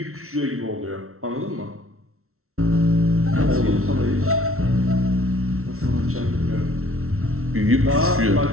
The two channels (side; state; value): left; late; 0.63 ms